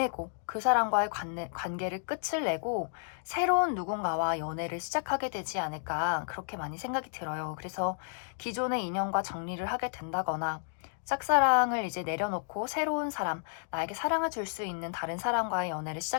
그 사람과의 관계를 끝을 내고 새로운 누군가와 연애를 시작하게 되지 않을까 그렇게 많이 생각이 들어요. 그래서 기존의 인연과 정리를 하게 된다거나 짝사랑을 이제 내려놓고 새로운 사람, 나에게 사랑을 줄 수 있는 다른 사람과의 연애를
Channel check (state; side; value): silent; right; digital silence